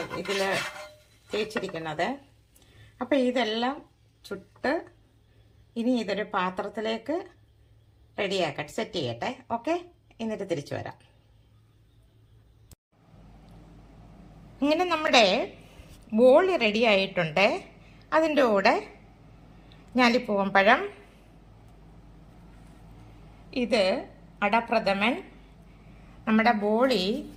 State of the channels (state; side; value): identical; both; correlation 1.00